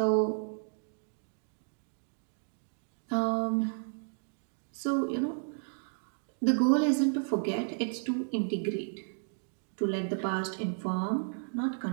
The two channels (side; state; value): left; silent; digital silence